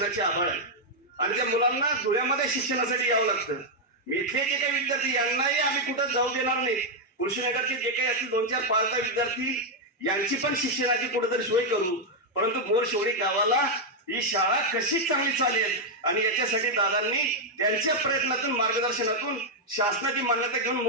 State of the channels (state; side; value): normal; both; correlation -0.01